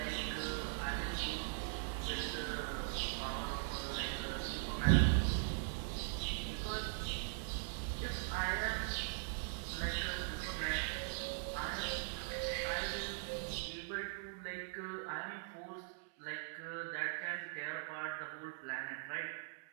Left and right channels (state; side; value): silent; left; digital silence